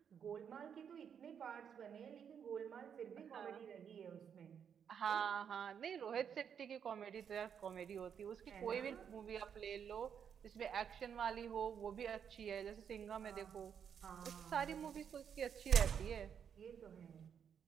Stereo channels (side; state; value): left; quieter; 7.8 dB